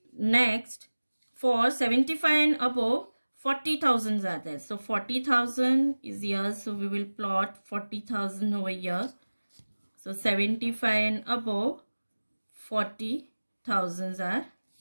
Next, for 75 and above, 40,000s are there. So 40,000 is here. So we will plot 40,000 over here. So 75 and above, 40,000s are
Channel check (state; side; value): inverted; both; correlation -1.00